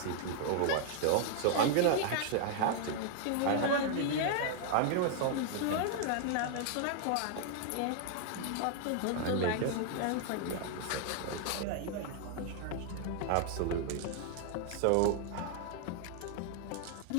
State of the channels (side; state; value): both; different; correlation 0.00